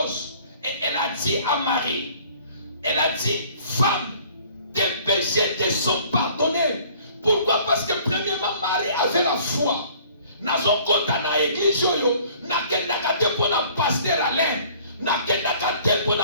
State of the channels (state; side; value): inverted; both; correlation -0.54